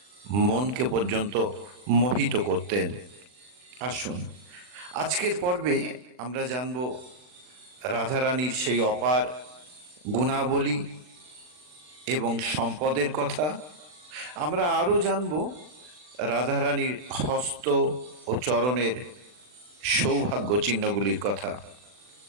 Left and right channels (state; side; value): late; left; 40 ms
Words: মনকে পর্যন্ত মোহিত করতেন। আসুন, আজকের পর্বে আমরা জানব রাধারানীর সেই অপার গুণাবলী এবং সম্পদের কথা। আমরা আরও জানব রাধারানীর হস্ত ও চরণের সৌভাগ্য চিহ্নগুলির কথা।